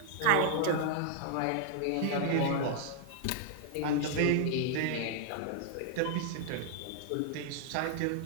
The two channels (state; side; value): different; both; correlation 0.00